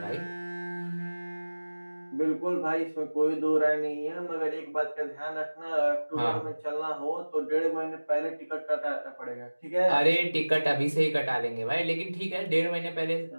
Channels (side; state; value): both; inverted; correlation -1.00